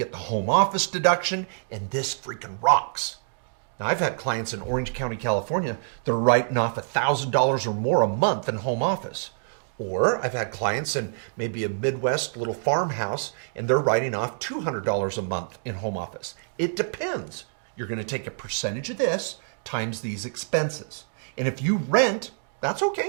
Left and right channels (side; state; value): left; silent; digital silence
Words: the home office deduction, and this freaking rocks. Now, I've had clients in Orange County, California, they're writing off $1,000 or more a month in home office. Or I've had clients in maybe a Midwest little farmhouse and they're writing off $200 a month in home office. It depends. You're going to take a percentage of this times these expenses. And if you rent, that's